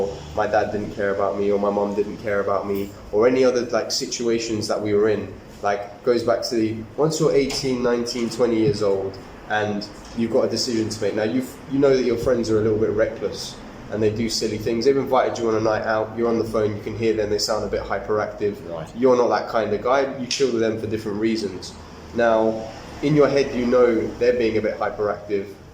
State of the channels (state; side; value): identical; both; correlation 1.00